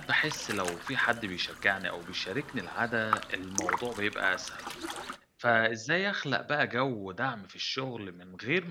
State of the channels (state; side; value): identical; both; correlation 1.00